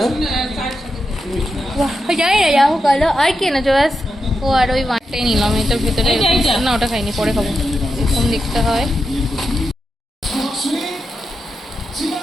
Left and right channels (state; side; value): normal; both; correlation 0.87